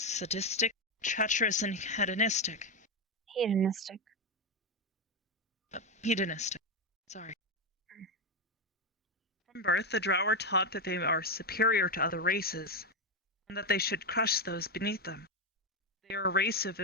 treacherous, and hedonistic. Hedonistic. Sorry. From birth, the Drow are taught that they are superior to other races, and that they should crush those beneath them. They are a race of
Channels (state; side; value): normal; both; correlation 0.09